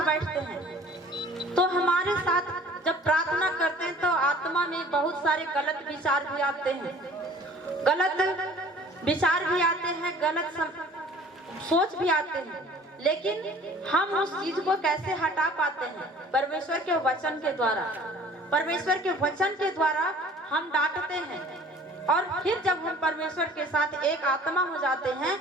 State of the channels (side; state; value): both; normal; correlation 0.50